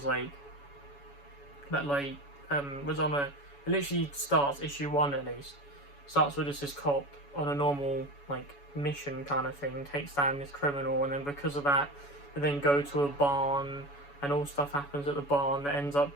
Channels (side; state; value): right; late; 7.1 ms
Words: like, was on a, it literally starts, issue 1 at least, starts with just this cop on a normal like mission kind of thing, takes down this criminal, and then because of that they then go to a barn, and all stuff happens at the barn that ends up